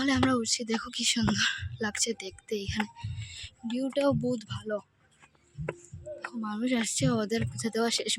আমরা উঠছি, দেখো কি সুন্দর লাগছে দেখতে। এখানে ভিউটাও বহুত ভালো, মানুষ আসছে, ওদের পুজো দেওয়া শেষ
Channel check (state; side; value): identical; both; correlation 1.00